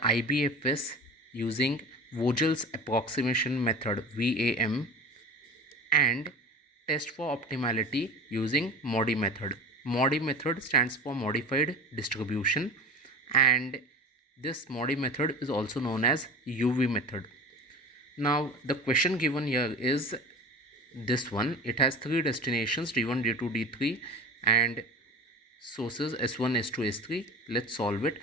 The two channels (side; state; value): both; normal; correlation 0.33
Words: IBFS using Vogel's approximation method VAM, and test for optimality using MODI method. MODI method stands for modified distribution, and this MODI method is also known as UV method. Now the question given here is this one. It has three destinations, D1, D2, D3, and sources S1, S2, S3. Let's solve it.